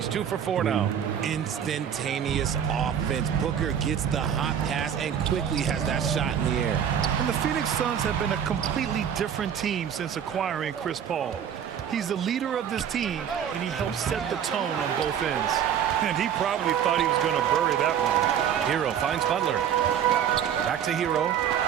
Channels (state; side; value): quieter; left; 8.8 dB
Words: 2 for 4 now. Instantaneous offense. Booker gets the hot pass and quickly has that shot in the air. And the Phoenix Suns have been a completely different team since acquiring Chris Paul. He's the leader of this team, and he helps set the tone on both ends. And he probably thought he was going to bury that one. Hero finds Butler. Back to Hero.